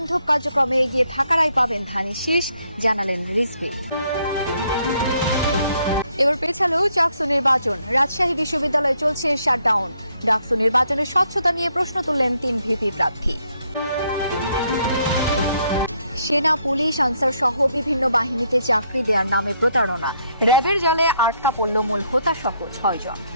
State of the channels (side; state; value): both; inverted; correlation -0.73